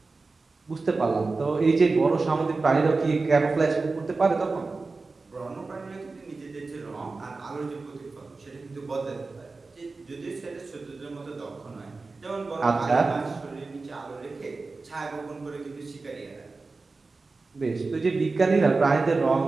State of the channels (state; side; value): quieter; left; 3.8 dB